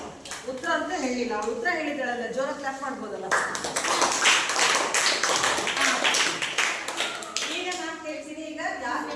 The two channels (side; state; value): both; identical; correlation 1.00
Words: ಉತ್ತರ ಅಂತ ಹೇಳಿಲ್ಲ, ಉತ್ತರ ಹೇಳಿದಾಳಲ್ಲ, ಜೋರ ಕ್ಲಾಪ್ ಮಾಡ್ಬೋದಲ್ಲ. ಈಗ ನಾನು ಕೇಳ್ತೀನಿ. ಈಗ ಯಾಕೆ